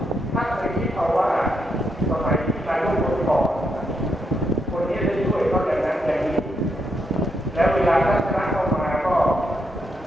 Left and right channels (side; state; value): both; normal; correlation 0.80